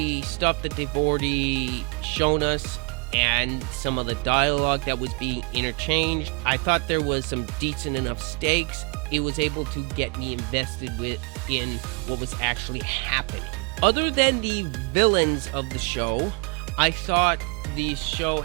stuff that they've already shown us and some of the dialogue that was being interchanged, I thought there was some decent enough stakes. It was able to get me invested in what was actually happening. Other than the villains of the show, I thought the show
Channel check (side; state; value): left; quieter; 33.4 dB